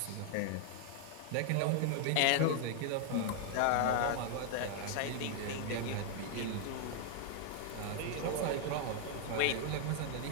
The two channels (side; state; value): both; different; correlation 0.00